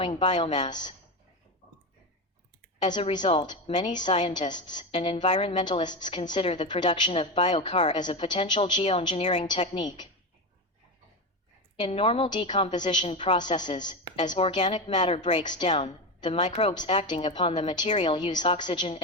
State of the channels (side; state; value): both; normal; correlation 0.18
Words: biomass. As a result, many scientists and environmentalists consider the production of biochar as a potential geoengineering technique. In normal decomposition processes, as organic matter breaks down, the microbes acting upon the material use oxygen